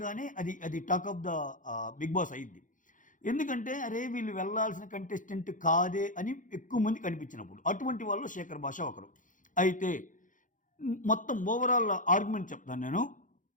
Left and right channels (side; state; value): right; late; 0.38 ms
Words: అది talk of the Bigg Boss అయ్యింది. ఎందుకంటే అరే వీళ్ళు వెళ్ళాల్సిన కంటెస్టెంట్ కాదే అని ఎక్కువ మంది కనిపించినప్పుడు, అటువంటి వాళ్ళు శేఖర్ భాష ఒకరు. అయితే మొత్తం ఓవరాల్ ఆర్గ్యుమెంట్ చెప్తాను నేను.